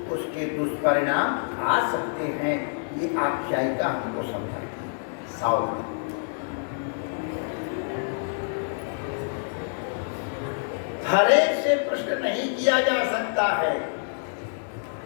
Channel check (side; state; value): right; silent; digital silence